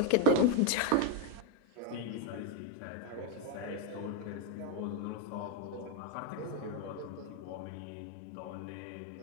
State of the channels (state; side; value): different; both; correlation 0.01